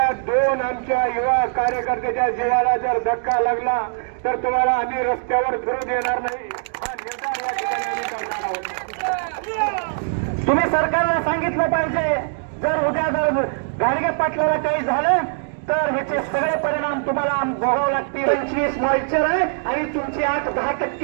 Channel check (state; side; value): silent; left; digital silence